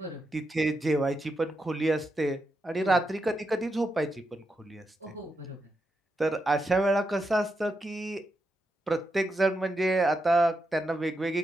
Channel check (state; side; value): normal; both; correlation 0.85